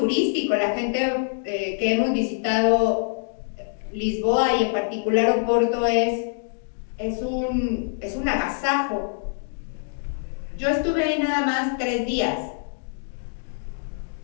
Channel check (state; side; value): silent; right; digital silence